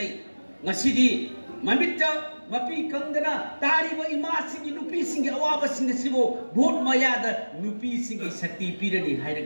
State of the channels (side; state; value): both; inverted; correlation -1.00